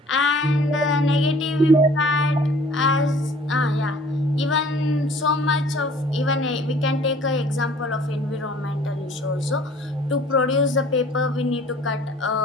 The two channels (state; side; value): normal; both; correlation 0.52